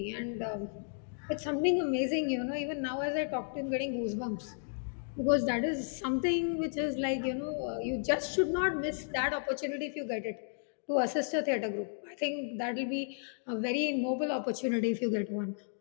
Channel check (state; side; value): silent; right; digital silence